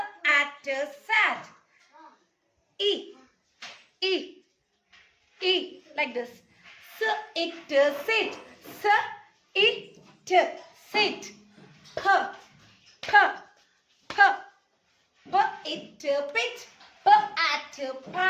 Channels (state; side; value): identical; both; correlation 1.00